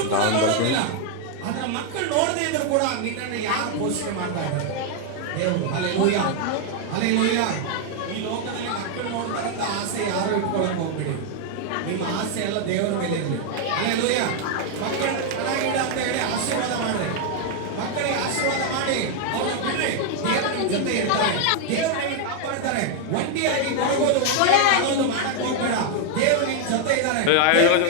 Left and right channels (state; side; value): different; both; correlation 0.00